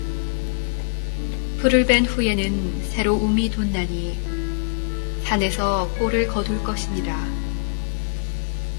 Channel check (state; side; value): silent; right; 63 dB below the other